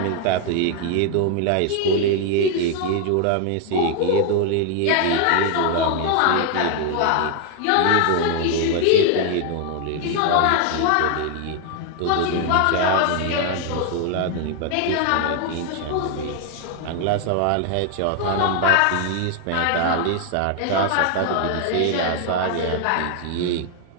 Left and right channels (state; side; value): different; both; correlation 0.00